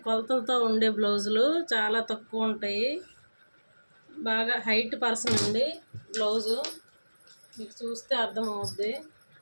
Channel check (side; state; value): both; inverted; correlation -1.00